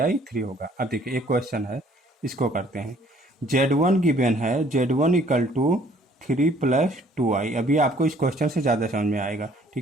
3 होगा। अब देखिए एक क्वेश्चन है, इसको करते हैं, Z1 गिवन है, Z1 इक्वल टू 3+2i, अभी आपको इस क्वेश्चन से ज़्यादा समझ में आएगा,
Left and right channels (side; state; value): both; normal; correlation 0.59